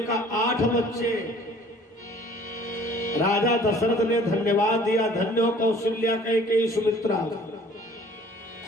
कहा 8 बच्चे। राजा दशरथ ने धन्यवाद दिया, धन्य हो कौशल्या, कैकेयी, सुमित्रा,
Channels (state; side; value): normal; both; correlation 0.52